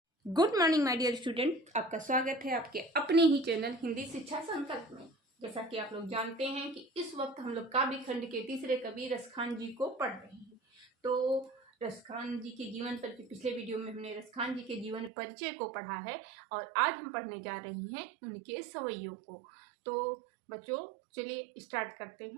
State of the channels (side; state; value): left; drops out; at 15.1 s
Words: Good morning my dear student, आपका स्वागत है आपके अपने ही चैनल हिंदी शिक्षा संकल्प में। जैसा कि आप लोग जानते हैं कि इस वक्त हम लोग काव्य खंड के तीसरे कवि रसखान जी को पढ़ रहे हैं। तो रसखान जी के जीवन पर पिछले वीडियो में हमने रसखान जी के जीवन परिचय को पढ़ा है और आज हम पढ़ने जा रहे हैं उनके सवैयों को। तो बच्चों चलिए स्टार्ट करते